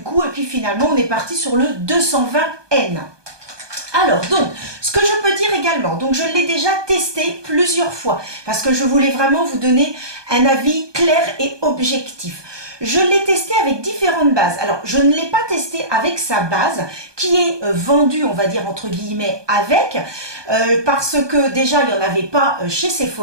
et puis finalement on est parti sur le 220N. Alors donc, ce que je peux dire également, donc je l'ai déjà testé plusieurs fois parce que je voulais vraiment vous donner un avis clair et objectif. Je l'ai testé avec différentes bases. Alors, je ne l'ai pas testé avec sa base qui est vendue, on va dire entre guillemets, avec, parce que déjà, il n'y en avait pas chez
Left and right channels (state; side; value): late; left; 1.2 ms